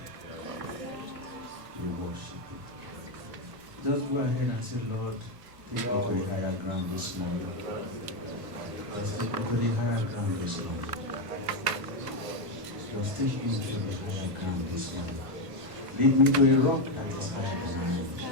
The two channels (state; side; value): late; left; 1.4 ms